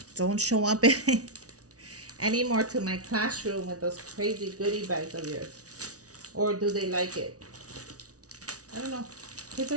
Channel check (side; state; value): left; late; 0.67 ms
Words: don't show up anymore to my classroom with those crazy goodie bags of yours. Or do they like it? I don't know. Kids